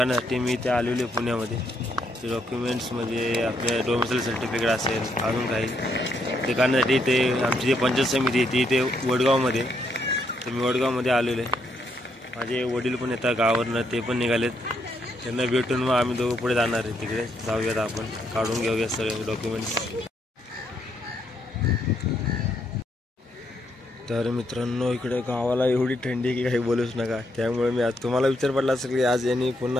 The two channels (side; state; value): both; normal; correlation 0.76